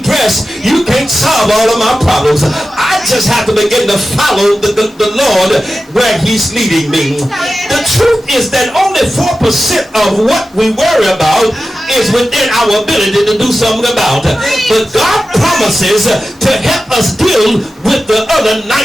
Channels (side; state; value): both; normal; correlation 0.93